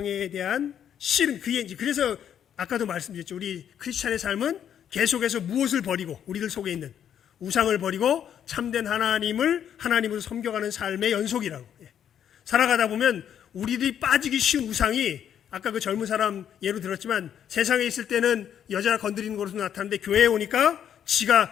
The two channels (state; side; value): quieter; right; 9.3 dB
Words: 대한 씨름, 그래서 아까도 말씀드렸죠. 우리 크리스찬의 삶은 계속해서 무엇을 버리고, 우리들 속에 있는 우상을 버리고 참된 하나님으로 섬겨가는 삶의 연속이라고. 살아가다 보면 우리들이 빠지기 쉬운 우상이, 아까 그 젊은 사람 예로 들었지만, 세상에 있을 때는 여자 건드리는 것으로 나타나는데 교회에 오니까